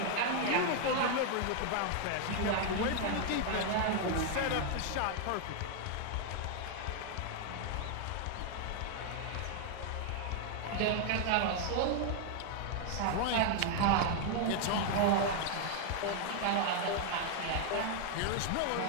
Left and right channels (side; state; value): both; different; correlation 0.00